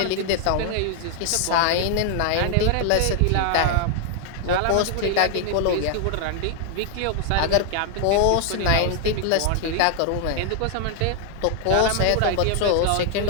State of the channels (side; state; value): both; different; correlation 0.00